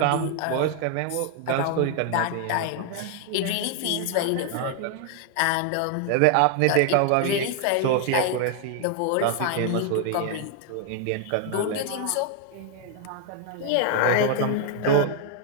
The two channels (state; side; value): different; both; correlation 0.00